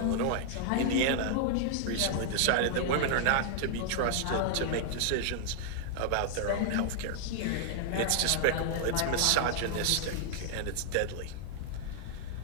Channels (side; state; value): both; different; correlation -0.01